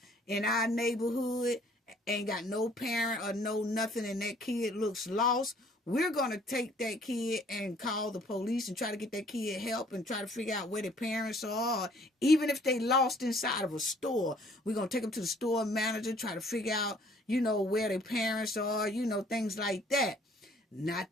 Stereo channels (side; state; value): both; normal; correlation 0.59